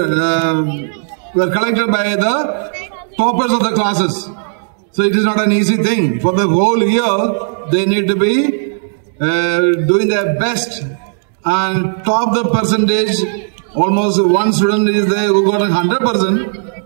collected by the toppers of the classes. So it is not an easy thing. For the whole year, they need to be doing their best and top the percentage. Almost one student is there who got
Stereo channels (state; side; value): silent; left; digital silence